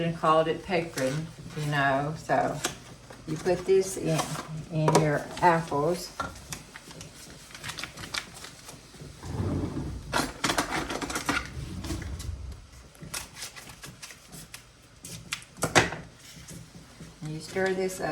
called it Pecrin, you know. So you put this in your apples. You stir this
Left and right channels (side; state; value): both; identical; correlation 1.00